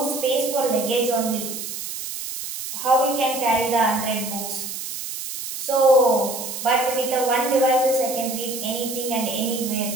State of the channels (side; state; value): right; noise; hiss, 7 dB below the sound